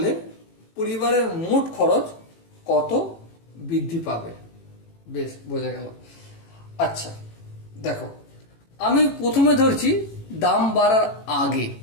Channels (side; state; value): right; late; 18 ms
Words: পরিবারের মোট খরচ কত বৃদ্ধি পাবে? বেশ, বোঝা গেল। আচ্ছা, দেখো, আমি প্রথমে ধরছি দাম বাড়ার আগে